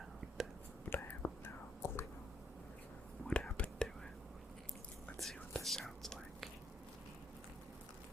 but I have no clue what happened to it. Let's see what this sounds like.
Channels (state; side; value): normal; both; correlation 0.72